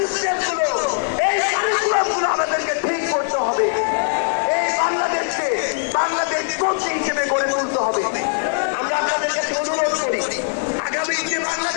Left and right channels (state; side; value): silent; right; digital silence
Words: এই কারিকুলামগুলো আমাদেরকে ঠিক করতে হবে। এই বাংলাদেশকে বাংলাদেশ পন্থী হিসেবে গড়ে তুলতে হবে। আমরা আপনাদের কাছে অনুরোধ করি, আগামী যে